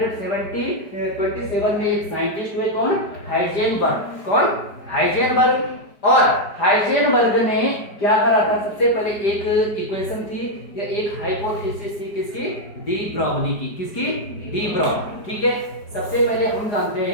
में एक साइंटिस्ट हुए, कौन? हाइजेनबर्ग। कौन? हाइजेनबर्ग। और हाइजेनबर्ग ने क्या करा था? सबसे पहले एक इक्वेशन थी या एक हाइपोथेसिस थी, किसकी? डी ब्रॉगली की। किसकी? De Broglie. ठीक है, सबसे पहले हम जानते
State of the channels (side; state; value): right; late; 4.9 ms